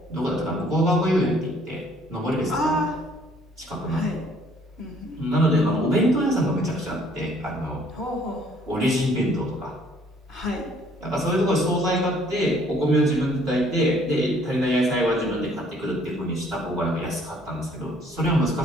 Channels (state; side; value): normal; both; correlation 0.60